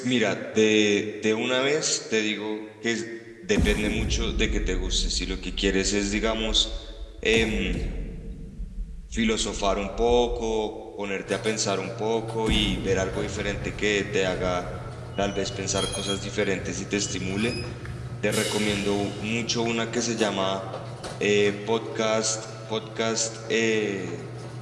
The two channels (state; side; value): identical; both; correlation 1.00